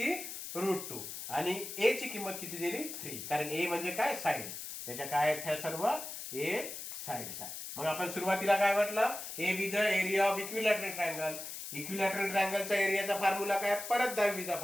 √2 आणि ए ची किंमत किती दिली 3. कारण ए म्हणजे काय साइड. त्याच्या काय आहेत ह्या सर्व ए साइड्स आहे. मग आपण सुरुवातीला काय म्हटलं a be the area of equilateral triangle. Equilateral ट्रायंगलचा एरियाचा फॉर्म्युला काय परत 10वीचा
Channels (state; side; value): noise; left; hiss, 8 dB below the sound